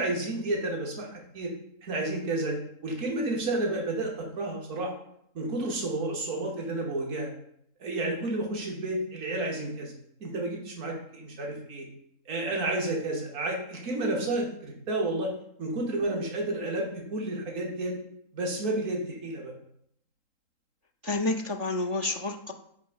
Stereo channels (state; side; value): late; left; 3.8 ms